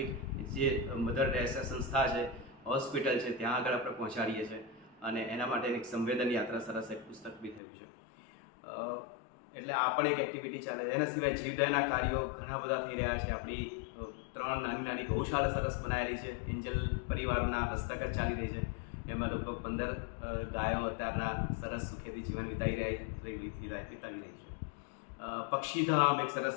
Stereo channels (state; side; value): drops out; right; at 7.6 s